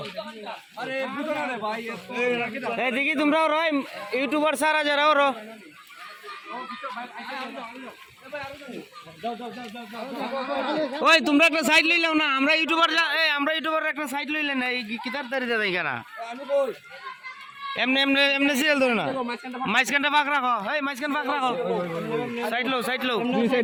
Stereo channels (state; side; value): identical; both; correlation 1.00